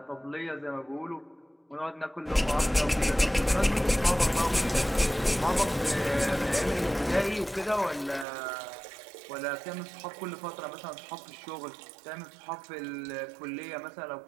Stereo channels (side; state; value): left; drops out; at 8.2 s